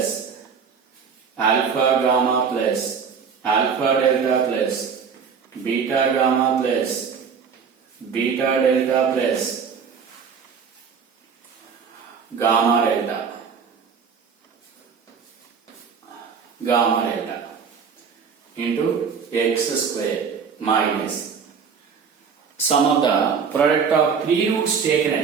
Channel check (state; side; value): quieter; left; 6.3 dB